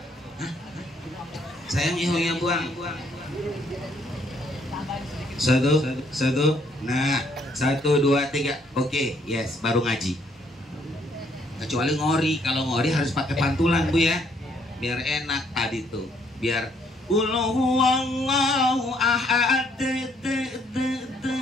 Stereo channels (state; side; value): normal; both; correlation 0.68